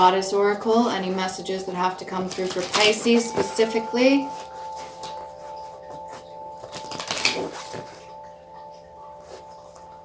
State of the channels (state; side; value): identical; both; correlation 1.00